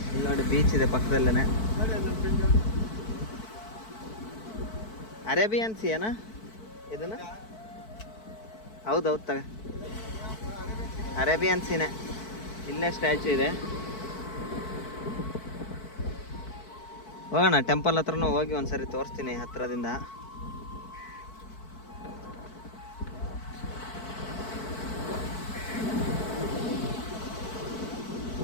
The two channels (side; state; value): right; late; 4.6 ms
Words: ಇಲ್ಲಿ ನೋಡಿ ಬೀಚ್ ಇದೆ ಪಕ್ಕದಲ್ಲೇ. ಅರೇಬಿಯನ್ ಸಿ ಏನಾ ಇದನ್ನು? ಹೌದೌದು ತಗ, ಅರೇಬಿಯನ್ ಸೀನೆ. ಇಲ್ಲೇ ಸ್ಟ್ಯಾಚು ಇದೆ. ಹೋಗೋಣ ಟೆಂಪಲ್ ಹತ್ರನೂ ಹೋಗಿ ಒಂದ್ಸರಿ ತೋರಿಸ್ತೀನಿ ಹತ್ರದಿಂದ.